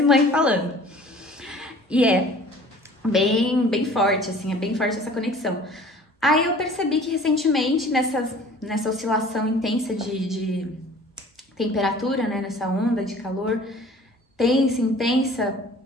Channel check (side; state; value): both; normal; correlation 0.48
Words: mãe falando. E é bem forte, assim, é bem forte essa conexão. Aí eu percebi que recentemente, nessa oscilação intensa de temperatura, né, nessa onda de calor, intensa,